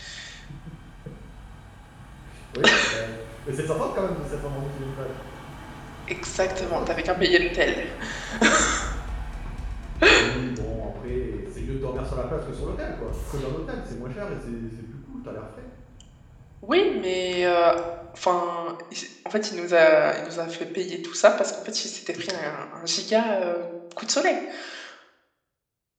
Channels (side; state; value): both; identical; correlation 1.00